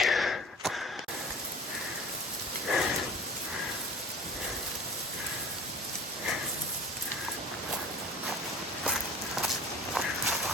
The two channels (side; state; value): both; normal; correlation 0.40